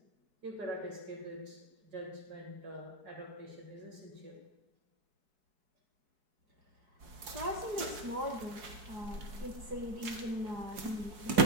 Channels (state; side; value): late; left; 4.7 ms